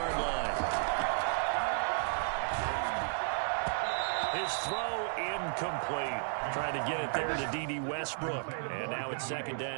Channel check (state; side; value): silent; left; 55 dB below the other